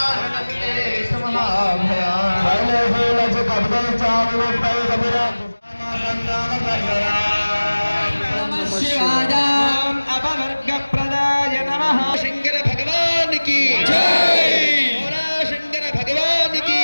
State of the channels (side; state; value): both; inverted; correlation -1.00